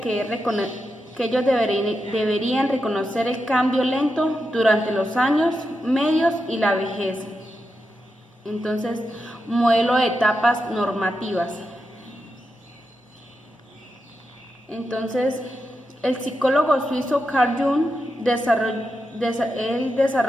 ellos deberían reconocer el cambio lento durante los años medios y la vejez. Entonces, modelo de etapas normativas. Entonces, el psicólogo suizo Carl Jung desarrolló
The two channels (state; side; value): normal; both; correlation 0.87